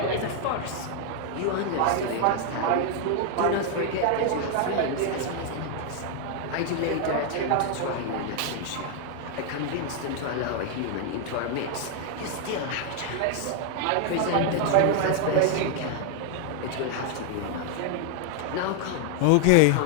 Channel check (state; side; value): different; both; correlation 0.00